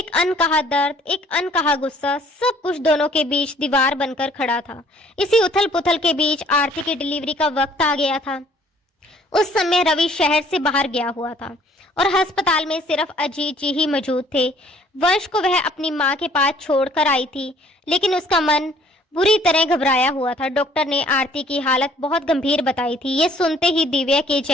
अनकहा दर्द, एक अनकहा गुस्सा, सब कुछ दोनों के बीच दीवार बनकर खड़ा था। इसी उथल पुथल के बीच आरती की डिलीवरी का वक्त आ गया था। उस समय रवि शहर से बाहर गया हुआ था और अस्पताल में सिर्फ अजीत जी ही मौजूद थे। वंश को वह अपनी माँ के पास छोड़कर आई थी, लेकिन उसका मन बुरी तरह घबराया हुआ था। डॉक्टर ने आरती की हालत बहुत गंभीर बताई थी। ये सुनते ही दिव्या के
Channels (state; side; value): normal; both; correlation 0.58